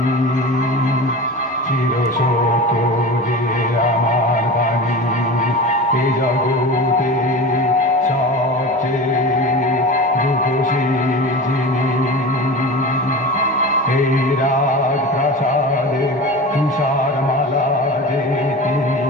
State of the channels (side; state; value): both; normal; correlation 0.31